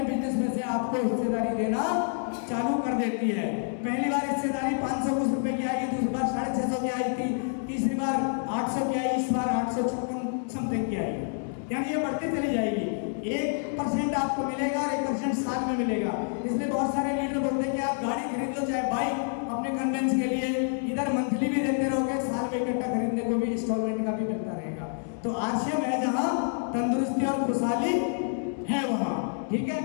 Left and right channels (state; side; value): silent; right; 59 dB below the other